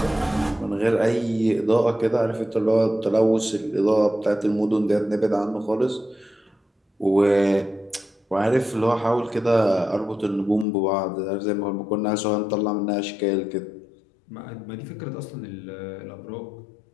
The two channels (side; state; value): right; drops out; at 10.7 s